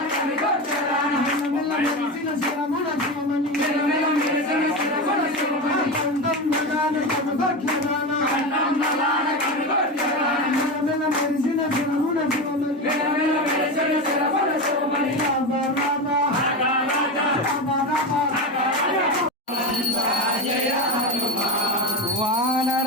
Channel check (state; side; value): normal; both; correlation 0.19